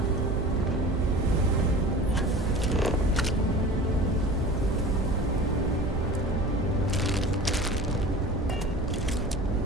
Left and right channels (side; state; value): both; normal; correlation 0.38